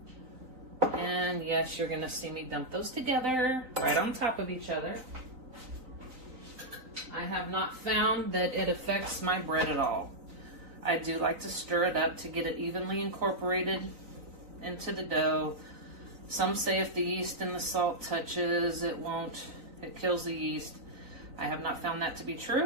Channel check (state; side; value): late; left; 3.9 ms